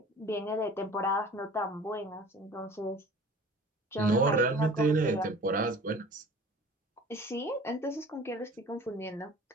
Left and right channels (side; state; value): both; normal; correlation 0.45